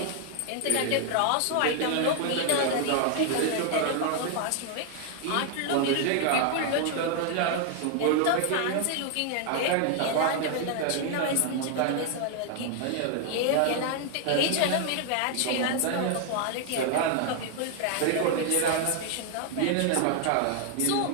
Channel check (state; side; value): different; both; correlation 0.00